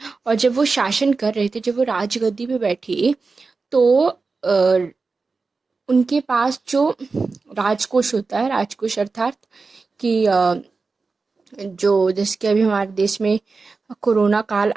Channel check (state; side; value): quieter; left; 4.2 dB